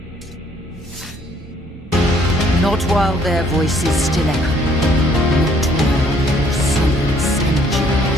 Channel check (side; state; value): both; normal; correlation 0.63